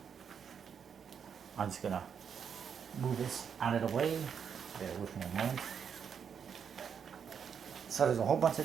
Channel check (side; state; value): left; quieter; 7.3 dB